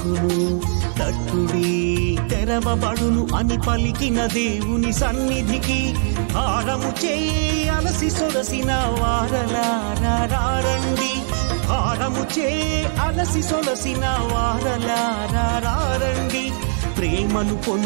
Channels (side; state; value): left; silent; digital silence